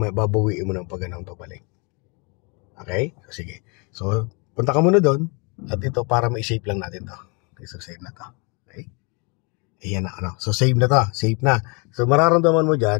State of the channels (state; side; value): quieter; right; 32.0 dB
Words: babawiin mo ng pagganang pabalik. Okay? So, sige. So, punta ka muna doon. At ito, para ma-save lang natin to. Okay, so, save na to. Okay? Ayan na, ano. So, save na to. Save na. So, mararamdaman mo